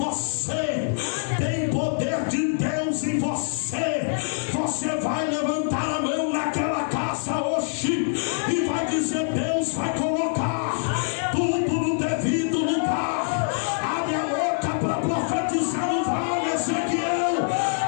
tem poder de Deus em você. Você vai levantar a mão naquela casa hoje e vai dizer: Deus vai colocar tudo no devido lugar. Abre a boca para profetizar no vale, Ezequiel.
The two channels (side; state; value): right; silent; digital silence